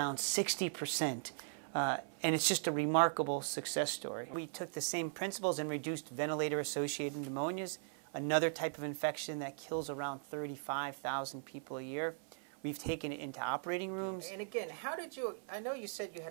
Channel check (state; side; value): silent; left; 52 dB below the other